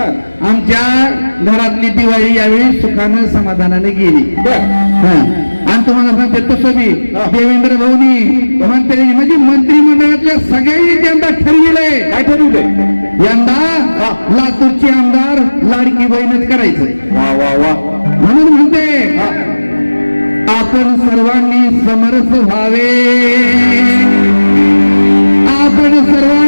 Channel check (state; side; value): inverted; both; correlation -1.00